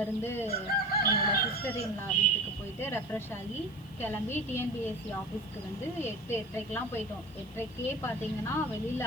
என்னோடய சிஸ்டர் இன்லா வீட்டுக்கு போயிட்டு ரெஃப்ரெஷ் ஆகி கிளம்பி டிஎன்பிஎஸ்சி ஆஃபீஸ்க்கு வந்து 8:30க்கெலாம் போயிட்டோம். 8:30க்கே பார்த்தீங்கன்னா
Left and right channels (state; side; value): noise; right; hiss, 29 dB below the sound